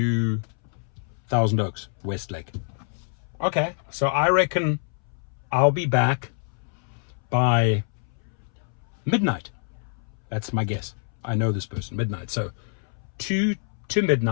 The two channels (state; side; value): silent; right; 61 dB below the other